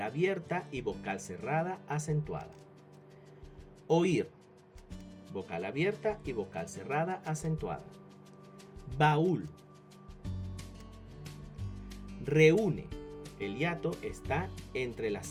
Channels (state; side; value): identical; both; correlation 1.00